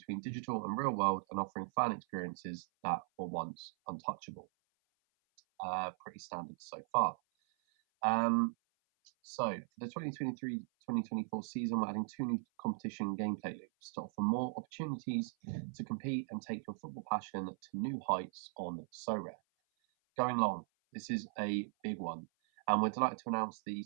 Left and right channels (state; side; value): silent; left; 52 dB below the other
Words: digital and real world and offering fan experiences that were once untouchable. Pretty standard so far. So for the 2023-2024 season, we're adding 2 new competition gameplay loops to offer more opportunities to compete and take your football passion to new heights on Sorare. Going long, this is a big one, and we're delighted to announce the